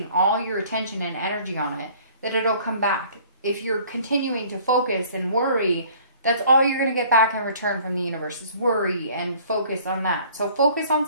all your attention and energy on it that it'll come back. If you're continuing to focus and worry, that's all you're going to get back in return from the universe is worry and focus on that. So focus on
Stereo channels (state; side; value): inverted; both; correlation -0.53